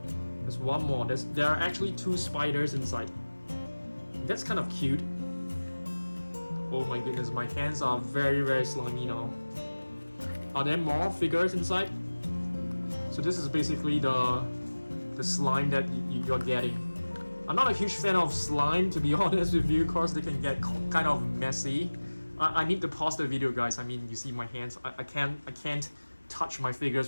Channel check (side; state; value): both; inverted; correlation -1.00